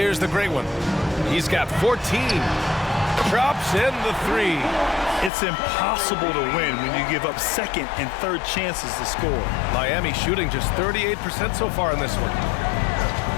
the great one. He's got 14. Drops in the 3. It's impossible to win when you give up second and third chances to score. Miami shooting just 38% so far in this one.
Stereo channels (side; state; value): right; drops out; at 5.3 s